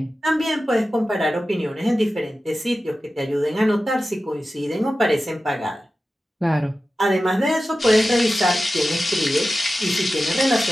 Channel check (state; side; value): normal; both; correlation 0.94